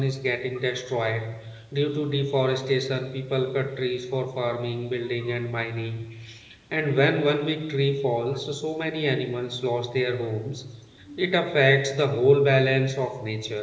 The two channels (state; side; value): identical; both; correlation 1.00